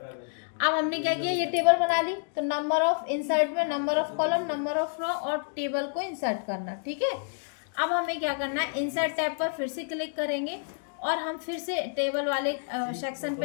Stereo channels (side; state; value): right; silent; digital silence